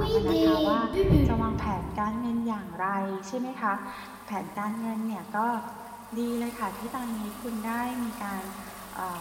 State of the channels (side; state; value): both; identical; correlation 1.00